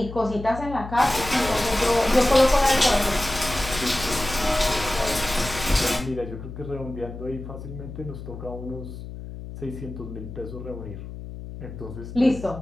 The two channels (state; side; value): noise; left; hum, 11 dB below the sound